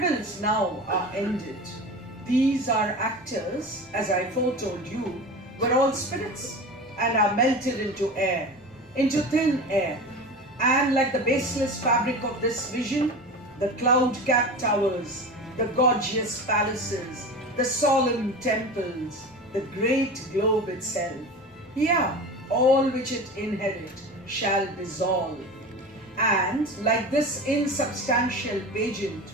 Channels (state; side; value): normal; both; correlation 0.31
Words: now are ended. These are actors, as I foretold you, were all spirits and are melted into air, into thin air. And like the baseless fabric of this vision, the cloud-capped towers, the gorgeous palaces, the solemn temples, the great globe itself, yeah, all which it inherit shall dissolve. And like this insubstantial pageant